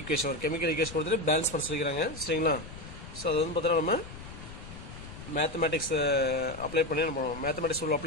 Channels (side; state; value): left; noise; rumble, 14 dB below the sound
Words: ஒரு கெமிக்கல் ஈக்குவேஷன் கொடுத்துட்டு பேலன்ஸ் பண்ண சொல்லிக்கிறாங்க சரிங்களா. ஸோ அது வந்து பார்த்தோன்னா நம்ம மேத்தமேட்டிக்ஸ் அப்ளை பண்ணி நம்ம மேத்தமேட்டிக்ஸ் ரூல்